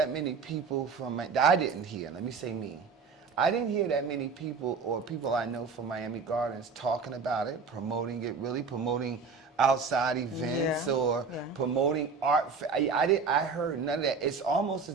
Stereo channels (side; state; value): left; quieter; 5.0 dB